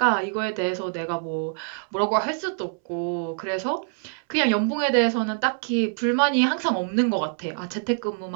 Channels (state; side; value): silent; left; 62 dB below the other